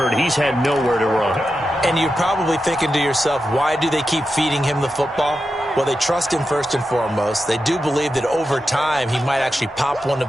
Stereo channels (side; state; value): both; normal; correlation 0.89